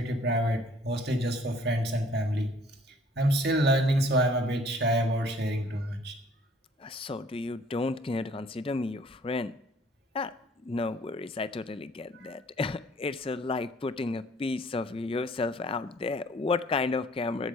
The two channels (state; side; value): normal; both; correlation 0.57